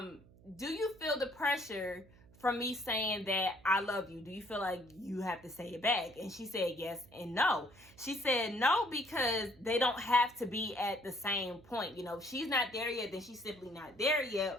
you feel the pressure from me saying that I love you? Do you feel like you have to say it back? And she said yes and no. She said no because they don't have to be at the same point. You know, if she's not there yet, then she's simply not there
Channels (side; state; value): right; noise; hum, 25 dB below the sound